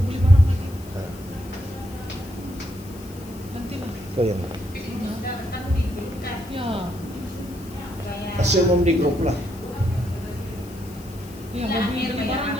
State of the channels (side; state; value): left; noise; hiss, 21 dB below the sound